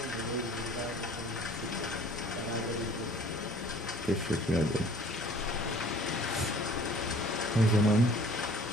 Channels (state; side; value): normal; both; correlation 0.51